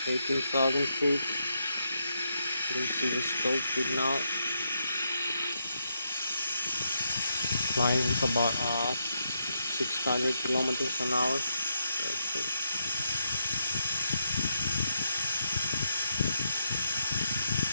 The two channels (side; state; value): both; inverted; correlation -0.81